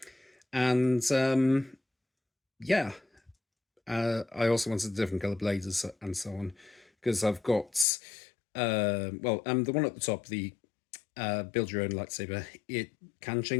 And yeah, I also wanted different color blades and so on, because I've got the one at the top, the build your own lightsaber. It can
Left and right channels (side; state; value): right; drops out; at 7.9 s